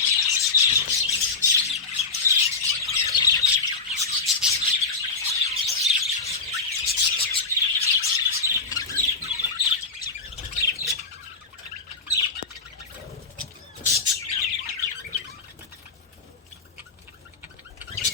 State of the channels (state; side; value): quieter; right; 4.2 dB